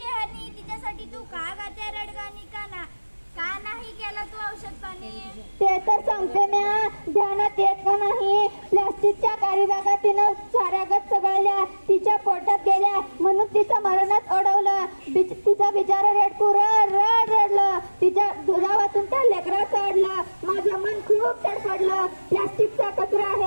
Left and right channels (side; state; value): both; inverted; correlation -1.00